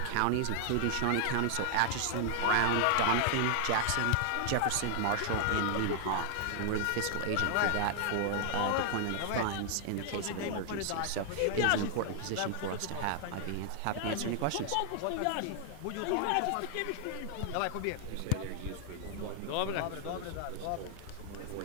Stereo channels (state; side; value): different; both; correlation 0.00